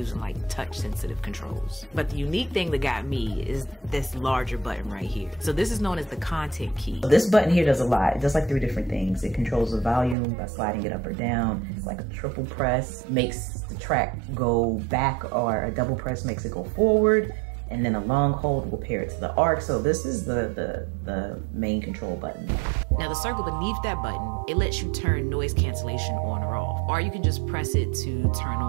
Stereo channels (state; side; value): drops out; left; at 10.2 s